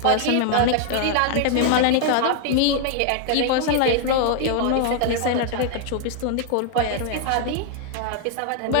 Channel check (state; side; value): different; both; correlation 0.00